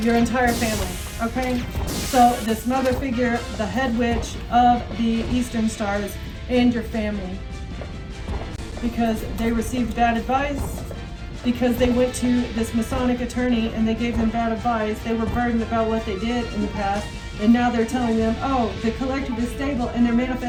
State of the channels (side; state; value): both; identical; correlation 1.00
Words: your entire family. Okay? So this mother figure, the head witch of the Eastern Stars, and your family. Because they received bad advice, because they went to this Masonic attorney and they gave them bad advice. They were burdened about what they did in the past, and now they're telling them, oh, the collective is stable, and they're